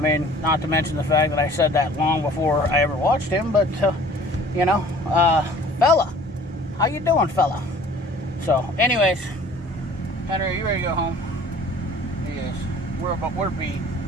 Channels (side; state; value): both; normal; correlation 0.50